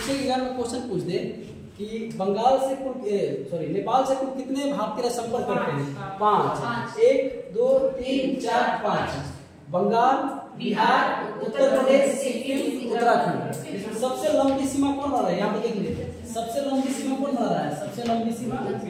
एग्जाम में क्वेश्चन पूछ दे कि बंगाल से कुल नेपाल से कुल कितने भारतीय संपर्क करते हैं? 5। 1 2 3 4 5। बंगाल, बिहार, उत्तर प्रदेश, सिक्किम, उत्तराखंड। सबसे लंबी सीमा कौन बना रहा है? यहाँ पे देखिए, सबसे लंबी सीमा कौन बना रहा है? सबसे लंबी सीमा,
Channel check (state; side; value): identical; both; correlation 1.00